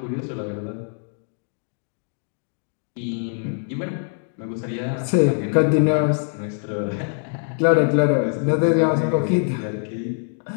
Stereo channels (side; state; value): right; silent; 59 dB below the other